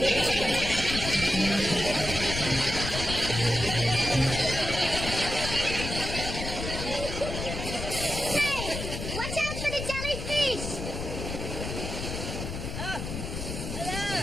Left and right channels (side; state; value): left; noise; rumble, 6 dB below the sound